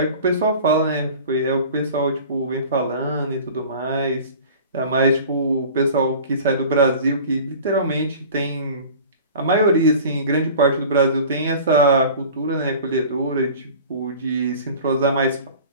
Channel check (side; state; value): both; inverted; correlation -0.42